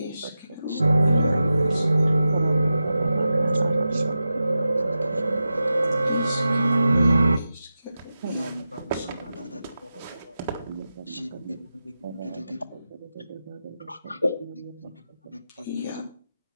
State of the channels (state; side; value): inverted; both; correlation -0.91